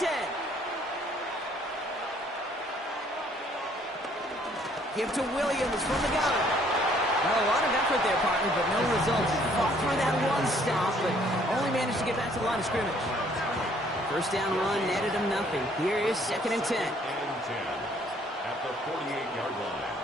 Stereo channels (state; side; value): normal; both; correlation 0.62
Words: Give to Williams from the gun. Well, a lot of effort there, partner, but no results. He fought through that one stop, but only managed to get back to the line of scrimmage. First down run netted him nothing. Here is 2nd and 10. At the 48-yard line.